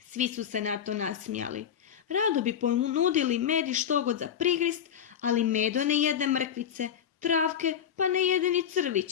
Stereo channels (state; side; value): quieter; right; 8.8 dB